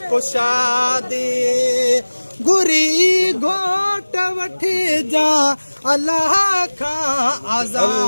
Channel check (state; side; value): inverted; both; correlation -1.00